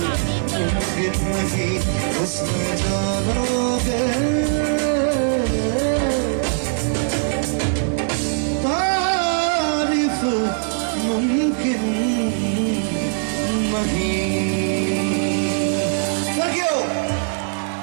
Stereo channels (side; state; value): left; silent; 65 dB below the other